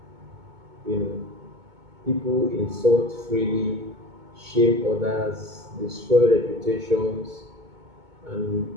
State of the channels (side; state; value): left; late; 2.2 ms